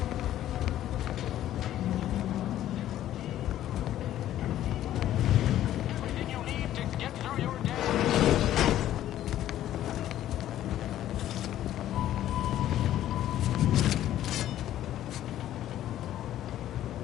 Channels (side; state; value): right; quieter; 12.5 dB